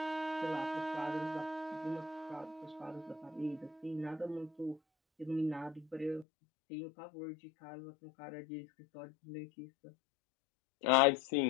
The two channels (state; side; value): drops out; right; at 6.2 s